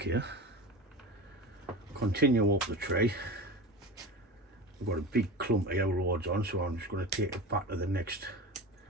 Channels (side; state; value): both; normal; correlation 0.30